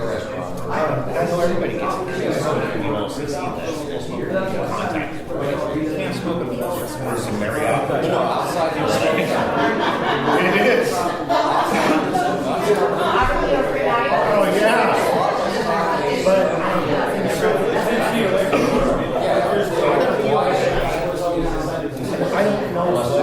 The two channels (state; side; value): identical; both; correlation 1.00